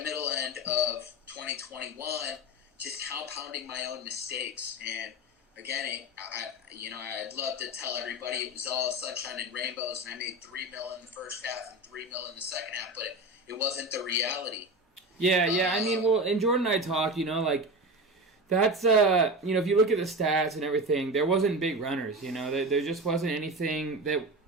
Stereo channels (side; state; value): both; normal; correlation 0.25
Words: middle end of 2021 just compounding my own mistakes. And again, I'd love to tell everybody it was all sunshine and rainbows and I made $3 million in the first half and $3 million in the second half, but it wasn't the reality. Yeah. And Jordan and I talked, like that's, if you look at the stats and everything, there wasn't big runners, there just wasn't anything that,